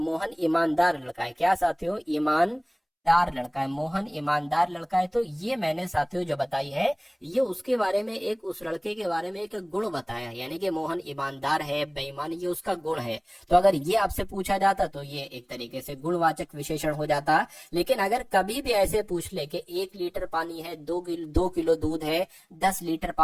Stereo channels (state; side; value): identical; both; correlation 1.00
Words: ईमानदार लड़का है। क्या साथियों, ईमानदार लड़का है, मोहन ईमानदार लड़का है। तो ये मैंने साथियों जो बताई है, ये उसके बारे में उस लड़के के बारे में एक गुण बताया, यानी कि मोहन ईमानदार है, बेईमान, ये उसका गुण है। तो अगर ये आपसे पूछा जाता तो ये एक तरीके से गुणवाचक विशेषण हो जाता। लेकिन अगर कभी भी ऐसे पूछ ले कि 1 लीटर पानी है, 2 किलो दूध है, 10 लीटर